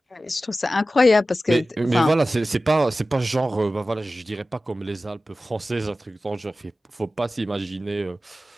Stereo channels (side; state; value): both; normal; correlation 0.95